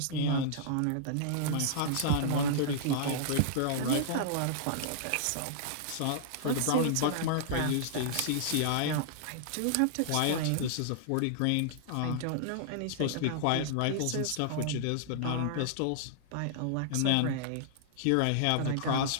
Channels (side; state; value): both; different; correlation -0.01